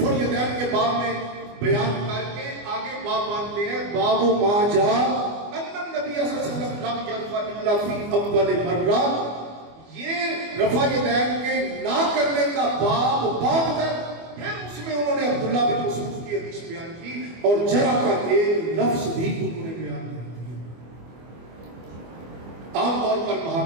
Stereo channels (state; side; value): late; left; 24 ms